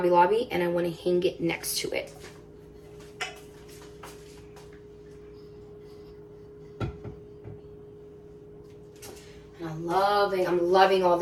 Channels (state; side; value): identical; both; correlation 1.00